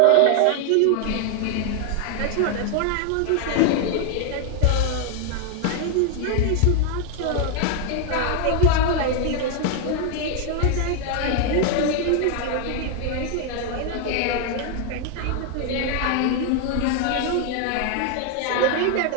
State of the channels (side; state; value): both; different; correlation 0.00